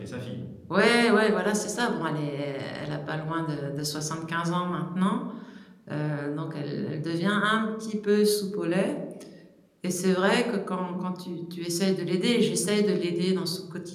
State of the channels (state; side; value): identical; both; correlation 1.00